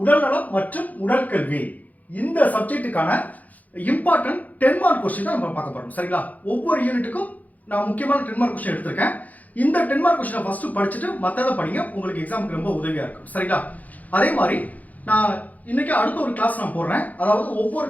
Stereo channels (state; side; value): late; right; 0.078 ms